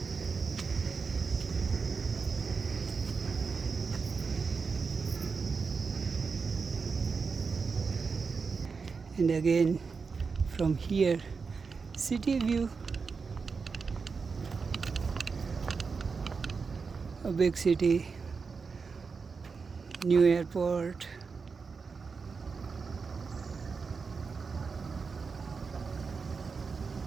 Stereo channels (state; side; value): quieter; left; 5.0 dB